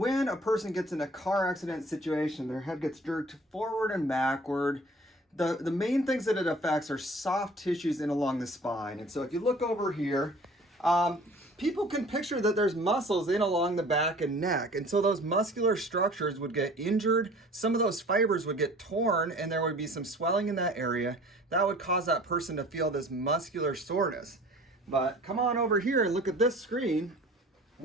a person gets in a car accident situation, their head gets jerked forward and backward. The main things that it affects are soft tissues in along the spine. And so if you look over here, people can picture that there's muscles in along the back and neck. And so those muscular structures would get injured. Some of those fibers would get torn and there would be some swelling in that area. That would cause that person to feel this muscular soreness. But come on over here and look at this screen.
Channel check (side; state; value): both; normal; correlation 0.48